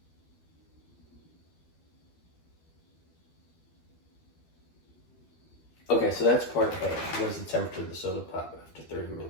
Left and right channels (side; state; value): right; late; 12 ms